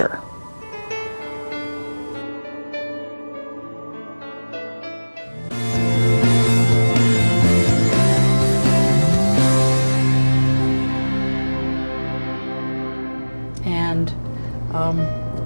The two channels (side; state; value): both; inverted; correlation -1.00